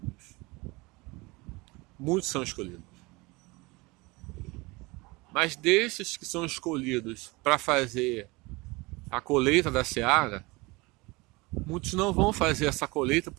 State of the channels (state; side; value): quieter; left; 24.2 dB